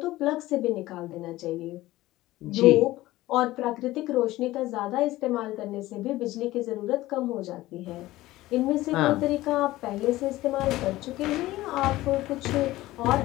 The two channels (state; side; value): quieter; right; 17.1 dB